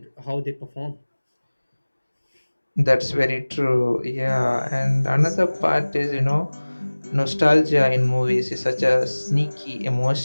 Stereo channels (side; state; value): both; inverted; correlation -1.00